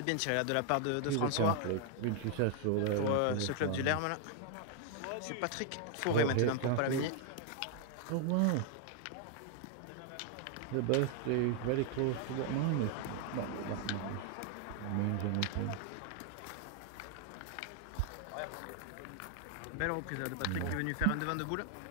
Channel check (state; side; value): different; both; correlation 0.00